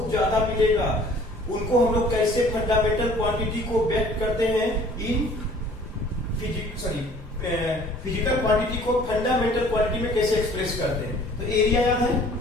ज्यादा मिलेगा. उनको हम लोग कैसे फंडामेंटल क्वांटिटी को व्यक्त करते हैं इन फिजिकल क्वांटिटी को फंडामेंटल क्वांटिटी में कैसे एक्सप्रेस करते हैं. तो एरिया याद है,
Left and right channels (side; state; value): both; normal; correlation 0.52